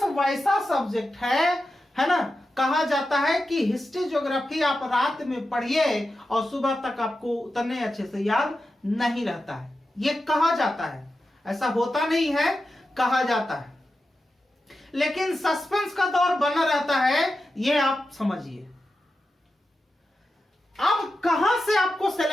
वैसा सब्जेक्ट है ना। कहा जाता है कि हिस्ट्री ज्योग्राफी आप रात में पढ़िए और सुबह तक आपको उतने अच्छे से याद नहीं रहता है, ये कहा जाता है। ऐसा होता नहीं है, कहा जाता है, लेकिन सस्पेंस का दौर बना रहता है, ये आप समझिए। अब कहां से आपको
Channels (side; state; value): both; normal; correlation 0.91